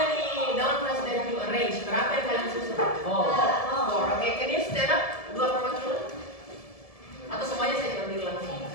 noun phrase that you arrange? Berapa yang kalian susun? 4. Oke, can you stand up? 2 perwakilan? Atau semuanya saya ambil langsung?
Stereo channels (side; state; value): right; late; 1.7 ms